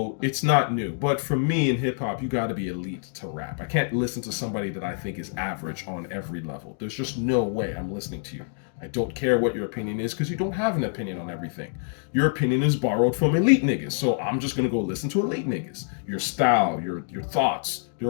it's not new. But for me in hip hop, you got to be elite to rap. I can't listen to somebody that I think is average on every level. There's just no way I'm listening to you. I don't care what your opinion is because you don't have an opinion on everything. Your opinion is borrowed from elite niggas. So I'm just going to go listen to elite niggas. Your style, your thoughts,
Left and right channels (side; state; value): right; silent; digital silence